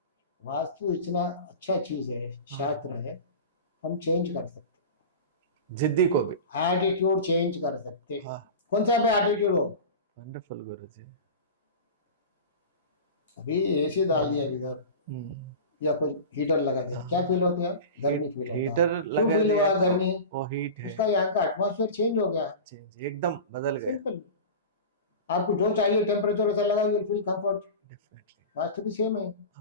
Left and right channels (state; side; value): inverted; both; correlation -0.31